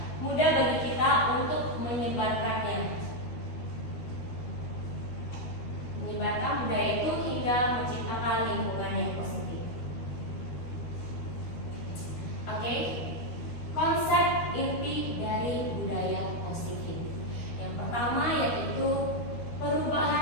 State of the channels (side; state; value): right; late; 13 ms